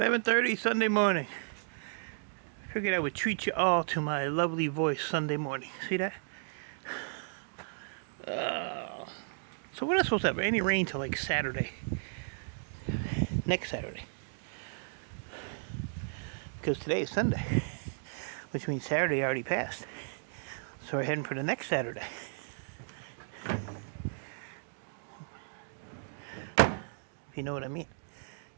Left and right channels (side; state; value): left; silent; digital silence